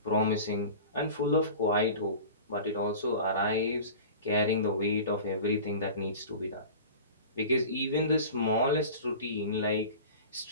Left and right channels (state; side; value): inverted; both; correlation -0.37